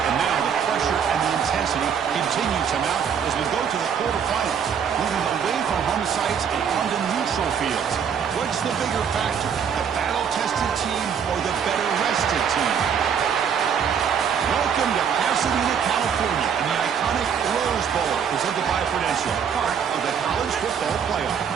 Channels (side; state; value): left; quieter; 7.5 dB